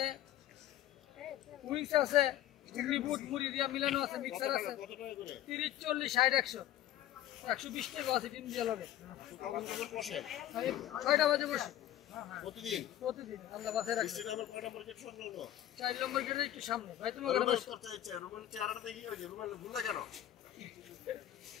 উইংস আছে বুট মুড়ি দিয়া মিলানো আছে মিক্সার আছে 30 40 60 100 120 টাকা আছে ডিম দিয়া লাগে 6টা বাজে বসে প্রতিদিন আল্লাহ বাসায় রাখছে 4 নম্বর গেটে একটু সামনে ভাই তুমি ওখানে বসো রুমের চেহারাটা দেখি ওই যে রুমের ভুল না কেন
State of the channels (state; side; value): quieter; right; 12.7 dB